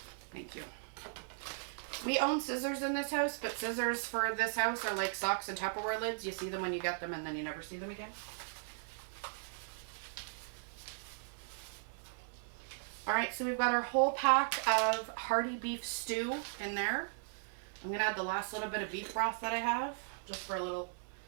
Thank you. We own scissors in this house, but scissors for this house are like socks and Tupperware lids. You see them when you get them and then you never see them again. Alright, so we've got our whole pack of hearty beef stew in there. I'm going to add the last little bit of beef broth that I have, just for a little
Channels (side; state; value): left; silent; 53 dB below the other